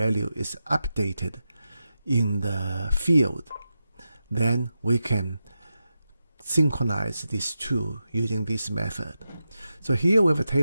is updated in the field, then we can synchronize these two using this method. So here we have a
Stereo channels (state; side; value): inverted; both; correlation -0.90